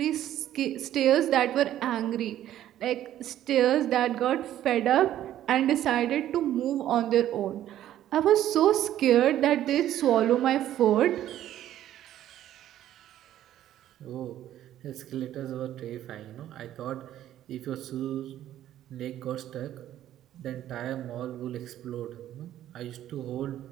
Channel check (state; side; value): quieter; left; 12.3 dB